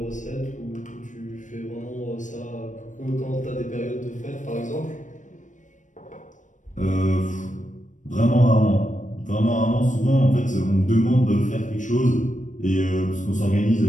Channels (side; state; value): right; late; 0.36 ms